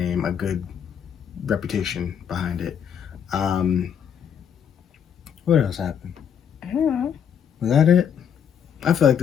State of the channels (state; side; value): quieter; right; 8.1 dB